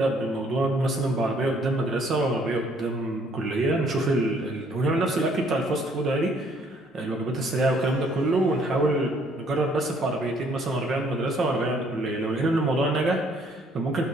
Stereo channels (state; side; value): normal; both; correlation 0.63